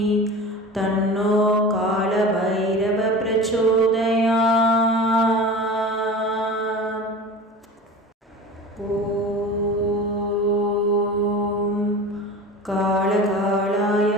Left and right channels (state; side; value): normal; both; correlation 0.34